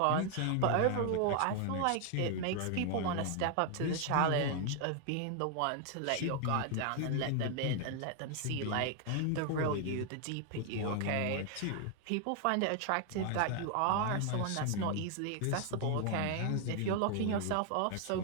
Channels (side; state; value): both; different; correlation 0.00